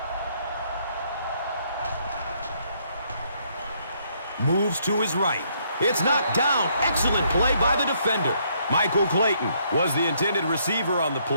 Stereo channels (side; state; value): both; inverted; correlation -0.70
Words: moves to his right. It's knocked down. Excellent play by the defender. Michael Clayton was the intended receiver on the